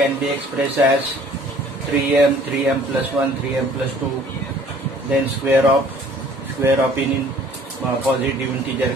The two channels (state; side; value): normal; both; correlation 0.54